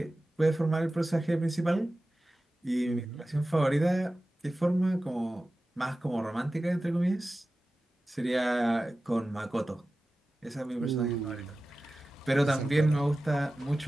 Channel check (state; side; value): normal; both; correlation 0.95